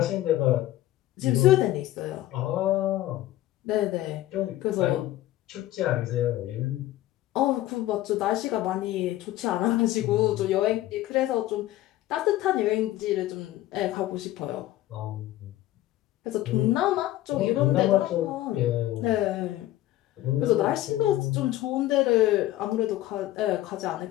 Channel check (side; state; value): right; quieter; 15.2 dB